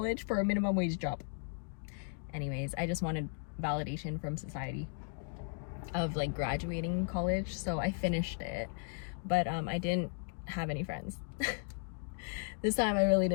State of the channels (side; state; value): right; silent; 54 dB below the other